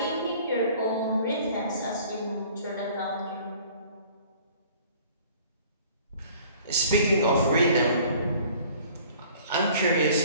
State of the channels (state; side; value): inverted; both; correlation -0.52